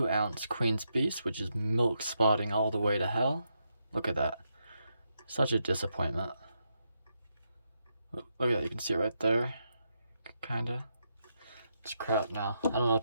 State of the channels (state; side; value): inverted; both; correlation -0.82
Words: ounce Queen's Beast, which is milk spotting all the way to hell. Look at that. Such a disappointment. Look at that, you can see it right there. Kinda. It's crap now. I don't know what